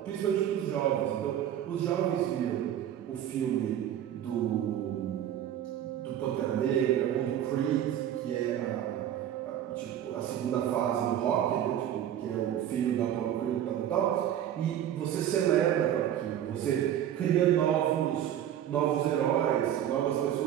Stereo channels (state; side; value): quieter; left; 10.8 dB